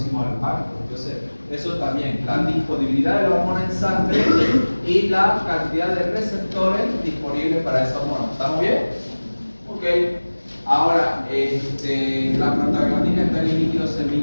al parto. Entonces, eso también, la disponibilidad de la hormona en sangre y la cantidad de receptores disponibles para esa hormona. ¿Estamos bien? Ok. Ahora, la prostaglandina está en el líquido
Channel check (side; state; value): both; inverted; correlation -1.00